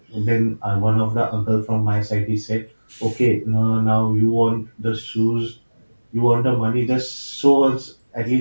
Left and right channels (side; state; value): both; inverted; correlation -1.00